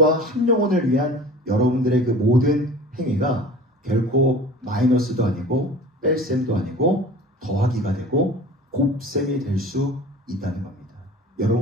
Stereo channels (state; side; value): normal; both; correlation 0.40